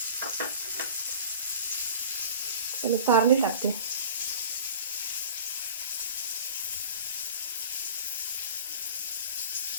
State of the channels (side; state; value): both; inverted; correlation -0.41